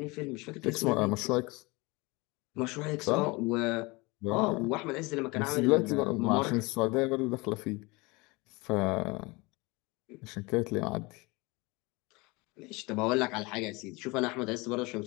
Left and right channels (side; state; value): right; quieter; 25.1 dB